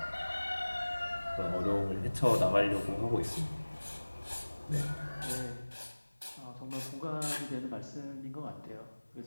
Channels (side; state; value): both; inverted; correlation -1.00